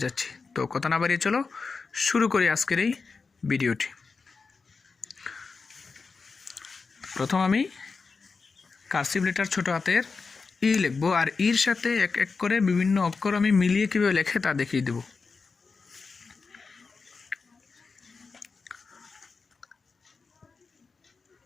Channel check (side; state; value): right; quieter; 4.6 dB